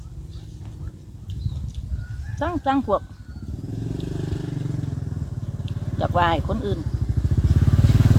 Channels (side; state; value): both; identical; correlation 1.00